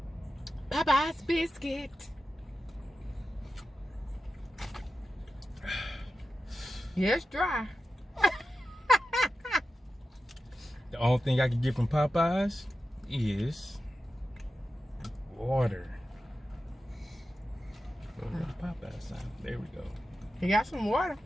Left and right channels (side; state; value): both; normal; correlation 0.92